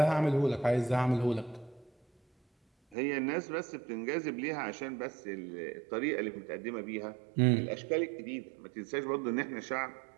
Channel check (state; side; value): drops out; left; at 3.0 s